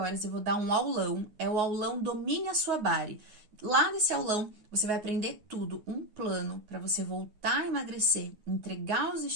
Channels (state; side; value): late; left; 9.6 ms